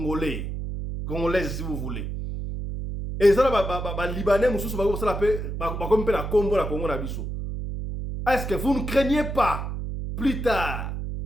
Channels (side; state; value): right; noise; hum, 5 dB below the sound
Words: si vous voulez. Et ça, les Libanais, comme la Congo, la Congo, la biso. Est-ce que vous ne craignez pas plus tard